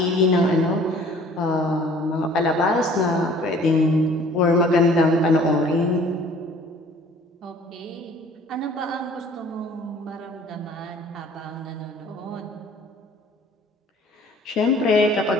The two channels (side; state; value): both; normal; correlation 0.52